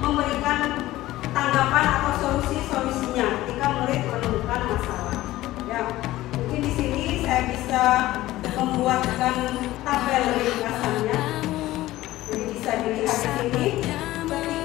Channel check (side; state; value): right; quieter; 16.3 dB